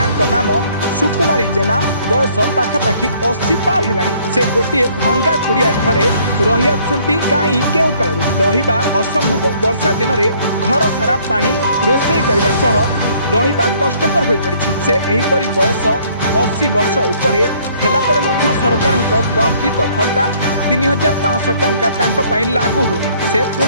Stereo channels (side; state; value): both; inverted; correlation -0.61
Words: नाम सुकुमारी जेना बयस पाखापाखि 80 पार है। से गोटे भंगा कुड़िया घरे रही आसुंती कहीं केउ काल रहिबा असंभव। वर्षा दिन में घर सारा पानी रोषे करने सह रहिबा कष्टकर हो पड़ी। से एहीपरि बयस 80 वर्ष उपरे हेला परे मध्य सरकार प्रस्थित भत्ता 3500 टंका लागू हुए। से